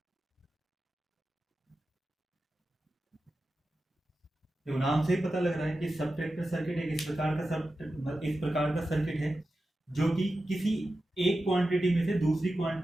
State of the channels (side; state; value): both; normal; correlation 0.92